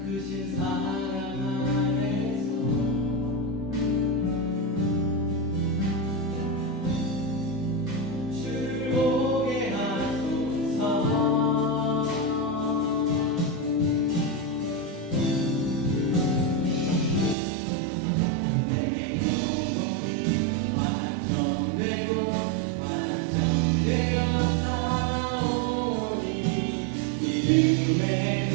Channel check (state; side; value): drops out; left; at 17.4 s